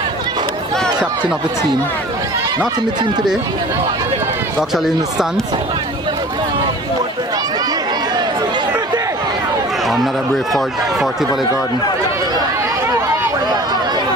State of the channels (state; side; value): normal; both; correlation 0.43